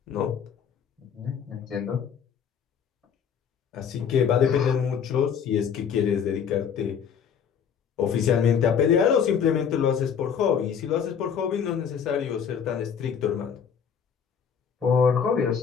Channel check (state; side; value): quieter; right; 7.4 dB